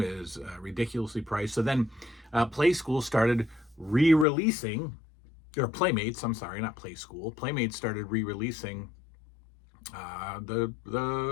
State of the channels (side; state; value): right; drops out; at 4.2 s